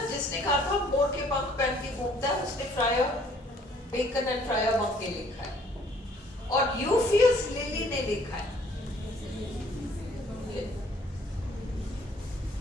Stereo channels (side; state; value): both; normal; correlation 0.60